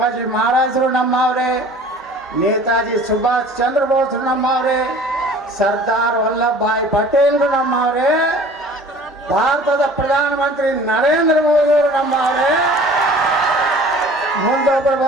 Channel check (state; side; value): normal; both; correlation 0.46